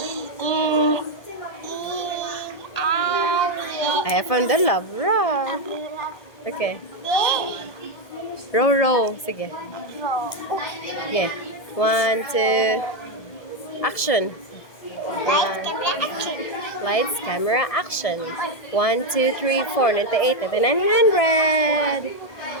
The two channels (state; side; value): late; right; 1.7 ms